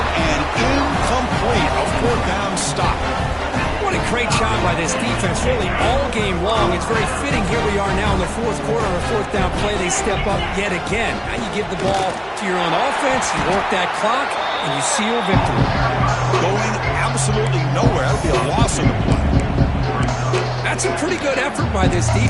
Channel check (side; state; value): both; identical; correlation 1.00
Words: and incomplete. A fourth down stop. What a great job by this defense, really all game long. It's very fitting. Here we are now in the fourth quarter on a fourth down play. They step up yet again. Now you give the ball to your own offense, you work that clock, and you seal victory. Going absolutely nowhere. That would be a loss on the play. That's a pretty good effort by this